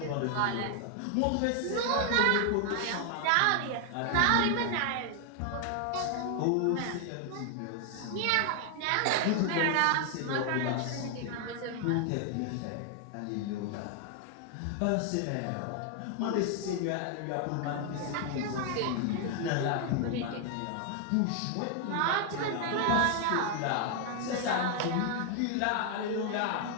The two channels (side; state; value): both; different; correlation 0.00